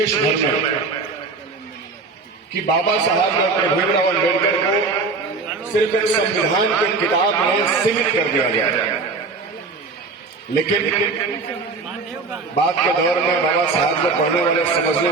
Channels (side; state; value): left; quieter; 4.1 dB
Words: भर में कि बाबा साहब डॉक्टर भीमराव अम्बेडकर को सिर्फ एक संविधान की किताब में सीमित कर दिया गया। लेकिन बाद के दौर में बाबा साहब को पढ़ने वाले समझने